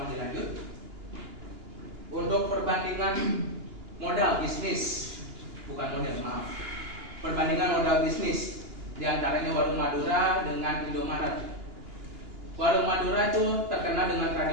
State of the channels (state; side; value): late; left; 2.9 ms